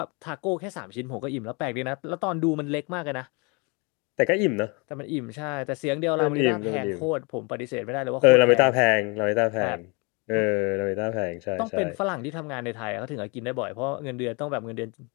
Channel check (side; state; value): right; quieter; 31.0 dB